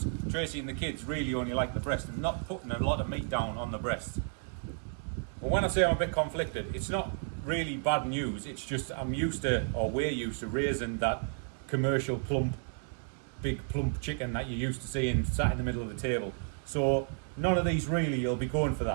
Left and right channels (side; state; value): left; silent; 56 dB below the other